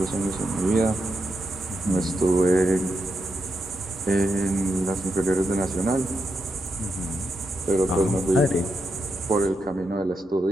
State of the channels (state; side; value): normal; both; correlation 0.84